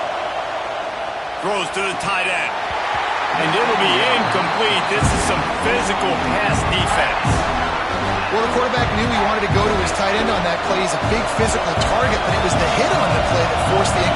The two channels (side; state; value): both; identical; correlation 1.00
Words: Throws to the tight end. And it'll be incomplete. This is some physical pass defense. Well, the quarterback knew he wanted to go to his tight end on that play. He's a big physical target, but it was the hit on the play that forced the